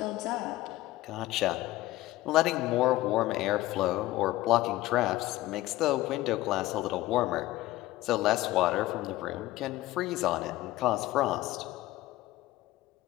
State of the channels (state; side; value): quieter; right; 16.9 dB